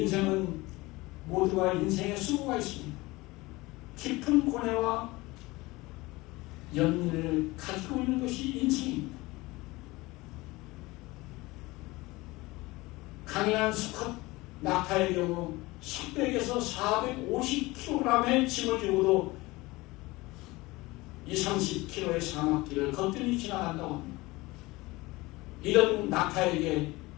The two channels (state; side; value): quieter; right; 21.4 dB